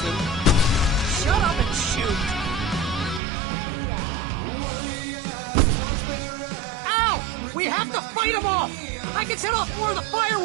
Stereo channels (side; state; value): left; drops out; at 3.2 s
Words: Shut up and shoot! Ow! We have to fight them off! I can set off more of the